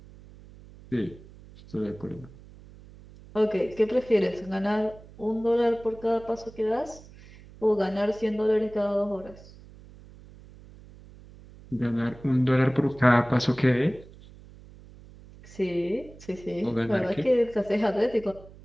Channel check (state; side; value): noise; right; hum, 20 dB below the sound